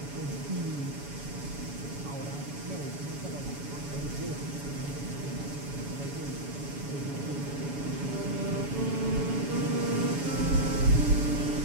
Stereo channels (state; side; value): late; left; 7.0 ms